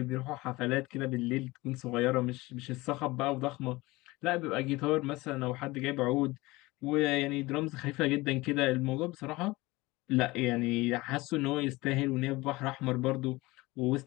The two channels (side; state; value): right; quieter; 21.1 dB